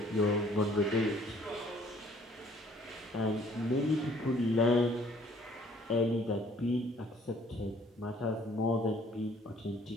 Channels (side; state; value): both; normal; correlation 0.59